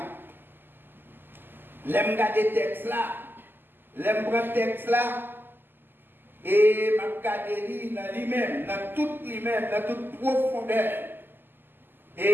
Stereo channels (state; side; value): late; left; 0.094 ms